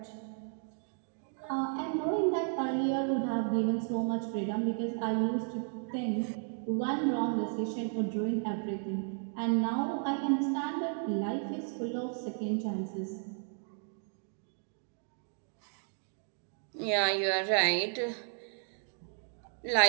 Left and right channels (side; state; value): left; silent; 55 dB below the other